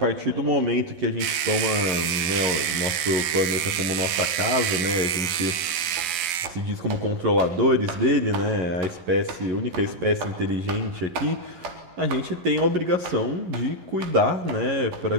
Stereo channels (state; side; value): late; left; 12 ms